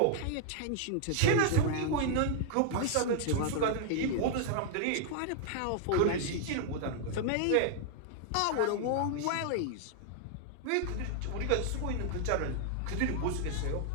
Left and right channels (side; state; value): both; different; correlation -0.01